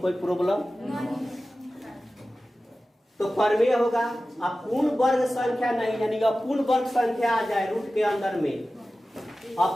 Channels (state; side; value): normal; both; correlation 0.95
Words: प्रॉब्लम? तो परमेय होगा। अब पूर्ण वर्ग संख्या नहीं, यानी अपूर्ण वर्ग संख्या आ जाए रूट के अंदर में,